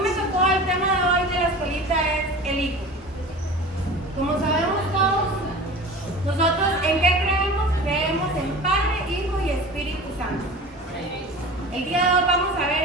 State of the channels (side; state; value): both; normal; correlation 0.36